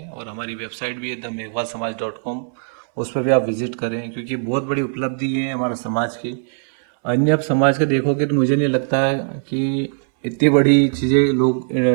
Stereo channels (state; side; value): silent; left; 66 dB below the other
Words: और हमारी वेबसाइट भी है themeghwalsamaj.com, उस पर भी आप विजिट करें, क्योंकि बहुत बड़ी उपलब्धि है हमारे समाज की। अन्य आप समाज का देखोगे तो मुझे नहीं लगता है कि इतनी बड़ी चीज़ें लोग